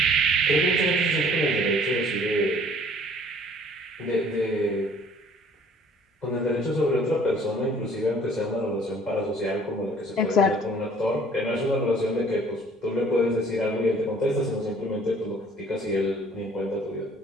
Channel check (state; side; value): normal; both; correlation 0.55